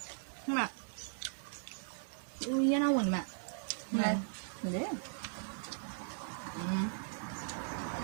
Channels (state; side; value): silent; left; 52 dB below the other